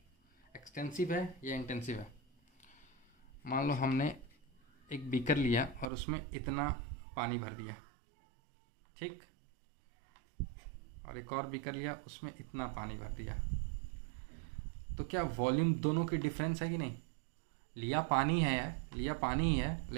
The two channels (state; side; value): drops out; left; at 5.9 s